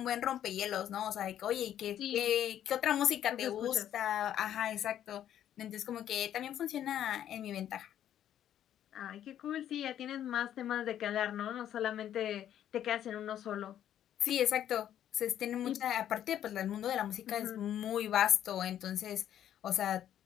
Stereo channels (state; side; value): quieter; right; 10.8 dB